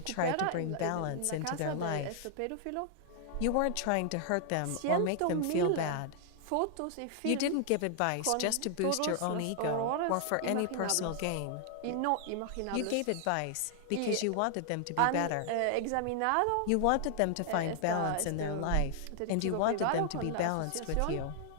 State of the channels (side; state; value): both; different; correlation 0.00